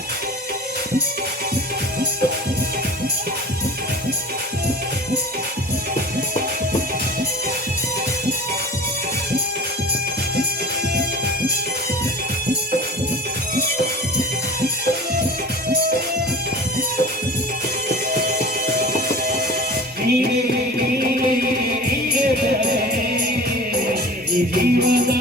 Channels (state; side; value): normal; both; correlation 0.38